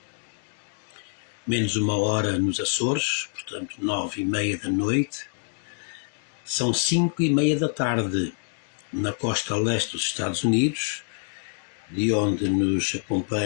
menos uma hora nos Açores, portanto 9h30 da noite, são 5h30 da tarde na costa leste dos Estados Unidos, de onde nos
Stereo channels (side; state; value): right; silent; 61 dB below the other